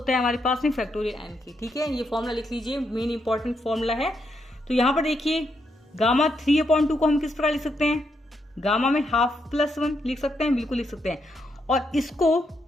है हमारे पास में फैक्टोरियल n की, ठीक है। ये फॉर्मूला लिख लीजिए, मेन इंपॉर्टेंट फॉर्मूला है। तो यहाँ पर देखिए गामा 3/2 को हम किस प्रकार लिख सकते हैं, गामा में हाफ प्लस 1 लिख सकते हैं, बिल्कुल लिख सकते हैं। और इसको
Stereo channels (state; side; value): normal; both; correlation 0.79